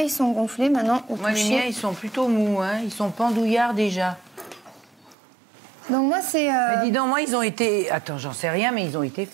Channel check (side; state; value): left; drops out; at 5.2 s